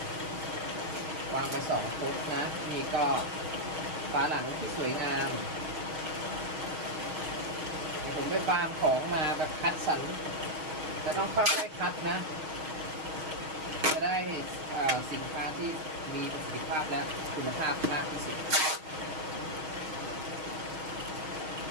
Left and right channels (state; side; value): late; left; 6.3 ms